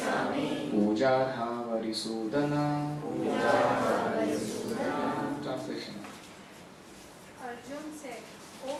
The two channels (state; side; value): identical; both; correlation 1.00